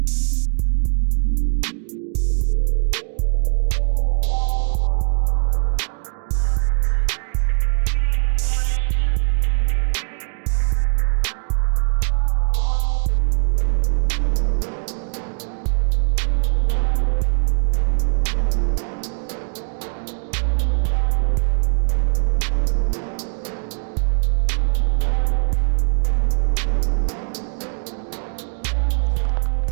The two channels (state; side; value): silent; left; digital silence